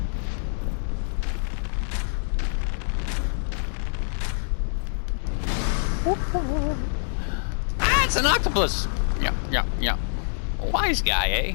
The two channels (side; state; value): right; silent; digital silence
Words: Ah, it's an octopus. Yeah. Wise guy, eh?